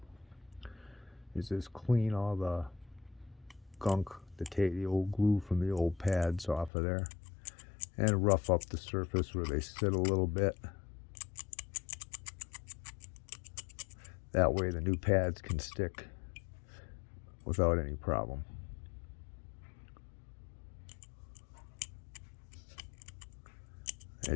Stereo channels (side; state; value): right; drops out; at 6.7 s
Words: is just clean all the gunk, the old glue from the old pads off of there, and rough up the surface where they sit a little bit. That way the new pads can stick without any problem.